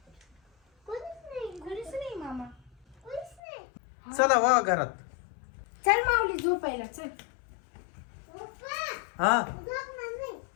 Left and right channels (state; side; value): drops out; right; at 3.4 s